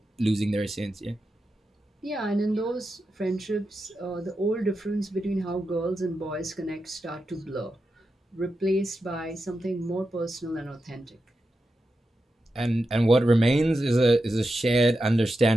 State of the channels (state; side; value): normal; both; correlation 0.89